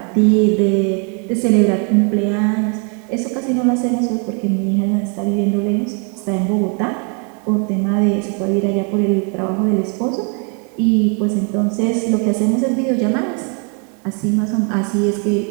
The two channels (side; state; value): left; quieter; 38.3 dB